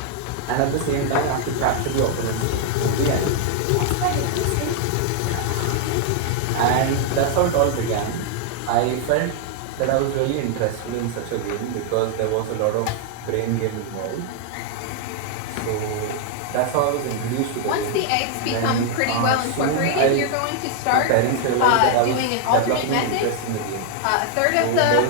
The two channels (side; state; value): both; different; correlation 0.00